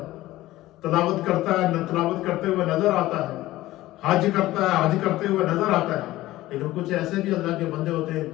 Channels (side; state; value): right; quieter; 16.6 dB